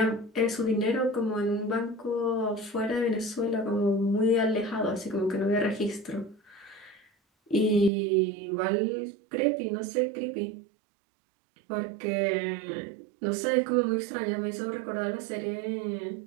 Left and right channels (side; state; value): left; drops out; at 7.9 s